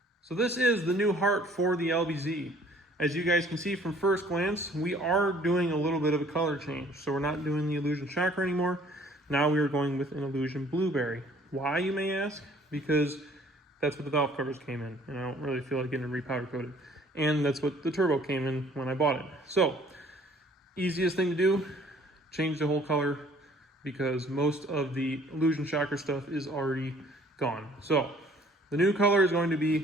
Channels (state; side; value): normal; both; correlation 0.56